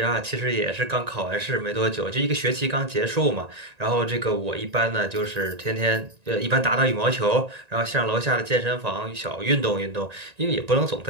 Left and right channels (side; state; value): left; late; 1.9 ms